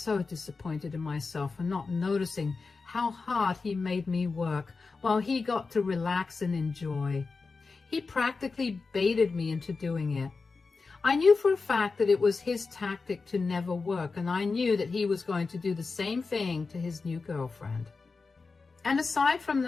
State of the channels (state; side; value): quieter; right; 4.3 dB